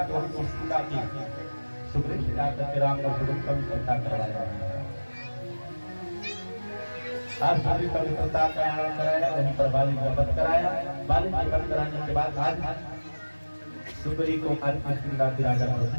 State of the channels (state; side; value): inverted; both; correlation -1.00